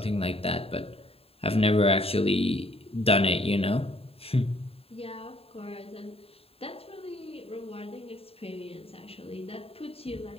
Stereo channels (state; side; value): late; right; 0.28 ms